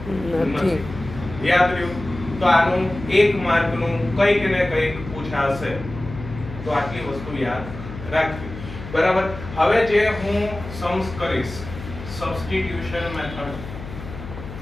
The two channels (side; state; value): left; noise; hum, 12 dB below the sound